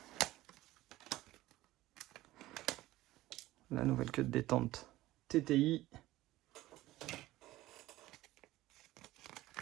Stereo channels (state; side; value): quieter; left; 16.8 dB